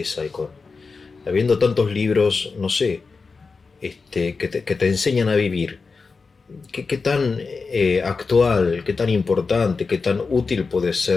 y con... Habiendo tantos libros, no sé, que te enseñan a vivir, qué tan actual, qué tan importante, qué tan útil puede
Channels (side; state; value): right; quieter; 4.5 dB